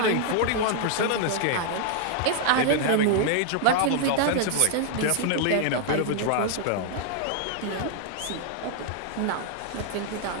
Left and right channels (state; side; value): different; both; correlation 0.00